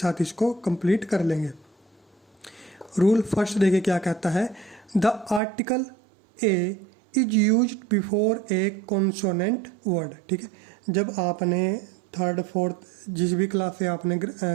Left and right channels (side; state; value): left; drops out; at 5.4 s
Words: इसको कंप्लीट कर लेंगे। रूल फर्स्ट देखिए क्या कहता है, the article a is used before A consonant word. ठीक है, जब आपने थर्ड फोर्थ जिस भी क्लास से आपने